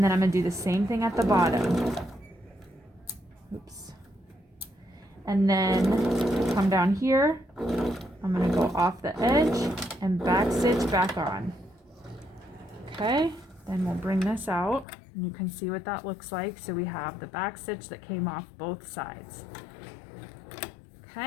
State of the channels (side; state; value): right; drops out; at 14.9 s